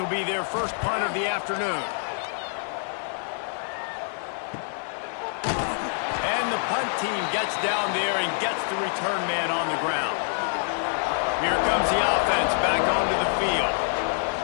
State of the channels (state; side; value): silent; right; 61 dB below the other